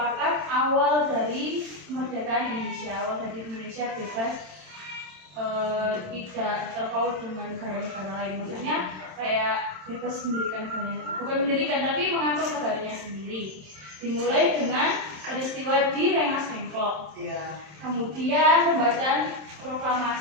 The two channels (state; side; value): late; left; 27 ms